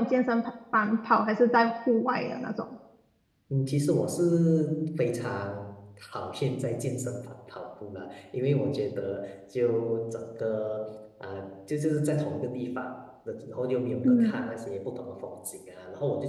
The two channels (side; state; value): both; identical; correlation 1.00